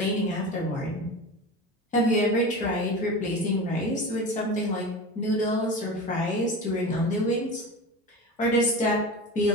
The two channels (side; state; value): both; normal; correlation 0.29